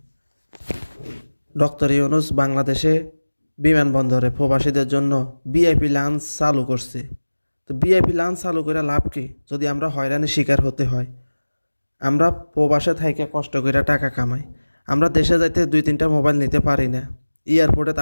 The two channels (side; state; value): both; inverted; correlation -1.00